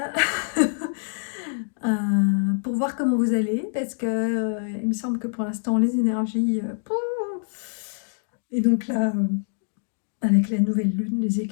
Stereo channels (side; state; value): right; silent; digital silence